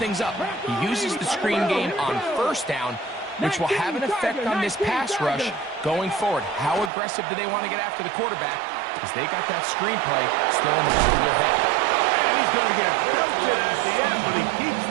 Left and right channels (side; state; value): left; drops out; at 6.9 s